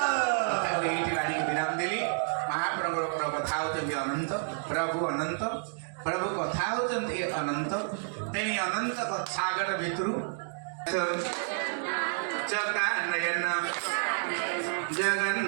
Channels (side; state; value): left; silent; digital silence